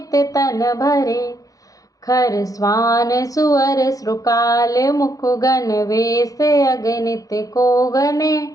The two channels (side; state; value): right; late; 0.17 ms